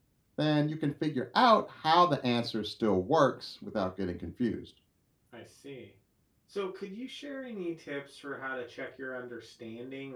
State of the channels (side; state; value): both; identical; correlation 1.00